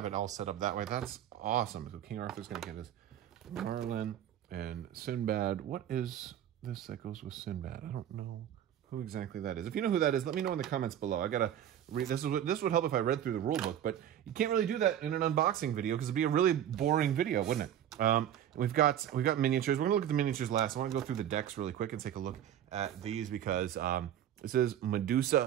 it all set up that way. That's awesome. So King Arthur's going to get his Merlin and Sinbad. What is this that goes with Sinbad? I don't know who exactly that is. If you know who that is, let me know in the comments below. I gotta read. This would help if I read through the rule book, but you can't really do that in an unboxing video because it'd be a really boring video, wouldn't it? We've got miniatures. We're gonna look at the miniatures last. I want to go through the decks really quick and take a look at these because it says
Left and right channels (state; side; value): quieter; left; 10.6 dB